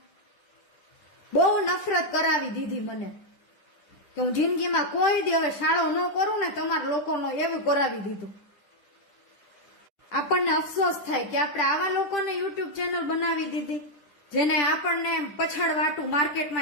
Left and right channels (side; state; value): right; late; 10 ms